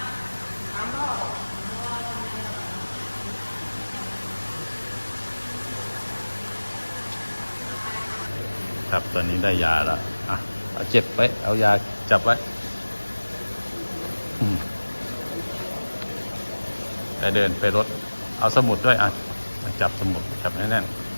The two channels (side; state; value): both; inverted; correlation -1.00